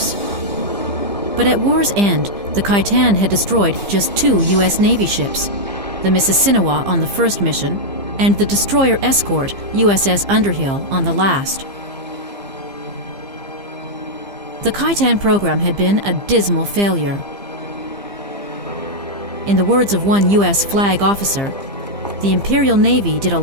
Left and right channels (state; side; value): late; left; 15 ms